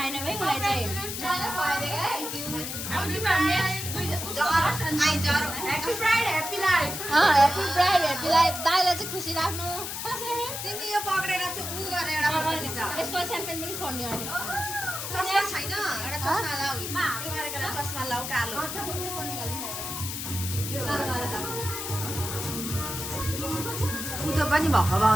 भाइ उसलाई चाहिँ ह्याप्पी ब्राइड ह्याप्पी लाइफ दाइलाई चाहिँ खुसी राख्नु तिमी यो पक्रेर चाहिँ उ गरेर यसको स्याम्पेन पनि खोल्ने अहिले चस्मा छैन एउटा चस्मा लाऊ यो गरेर चस्मा लाऊ कालो उतो पनि भएको भए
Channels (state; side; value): noise; left; hiss, 5 dB below the sound